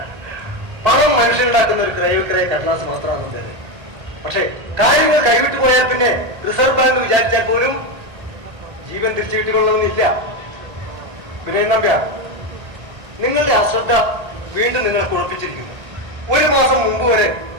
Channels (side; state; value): left; late; 1.8 ms